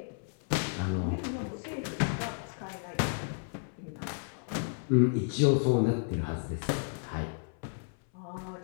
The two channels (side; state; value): right; silent; 56 dB below the other